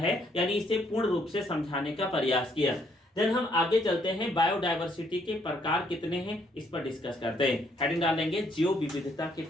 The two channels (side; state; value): both; normal; correlation 0.69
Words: यानी इसे पूर्ण रूप से समझाने का प्रयास किया। देन हम आगे चलते हैं, बायोडाइवर्सिटी के प्रकार कितने हैं इस पर डिस्कस करते हैं। हेडिंग डालेंगे जैव विविधता के